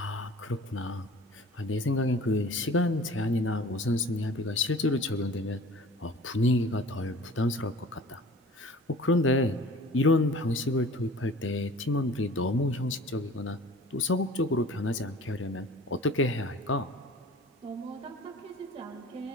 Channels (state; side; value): normal; both; correlation 0.45